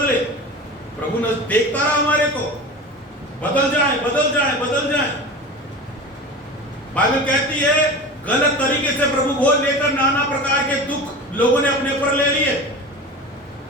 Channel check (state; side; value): normal; both; correlation 0.32